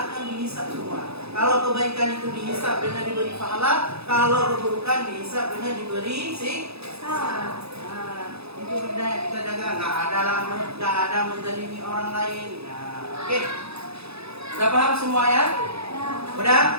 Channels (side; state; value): left; late; 0.79 ms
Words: dihisab semua. Kalau kebaikan itu dihisab dengan diberi pahala, kalau keburukan dihisab dengan diberi siksa. Nah, itu benda yang kita jaga. Nggak ada menzalimi orang lain. Nah, oke. Sudah paham semua ya? Udah?